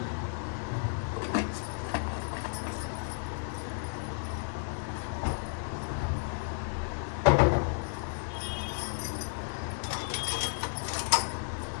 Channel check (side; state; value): right; silent; digital silence